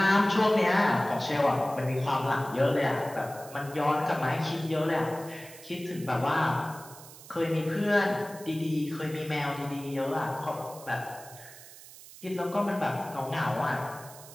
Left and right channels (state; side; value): noise; right; hiss, 18 dB below the sound